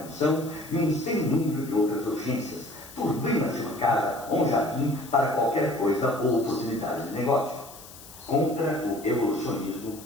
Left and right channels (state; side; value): noise; left; hiss, 18 dB below the sound